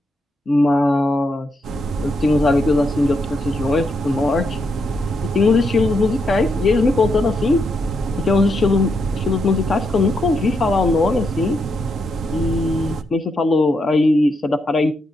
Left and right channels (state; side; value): normal; both; correlation 0.80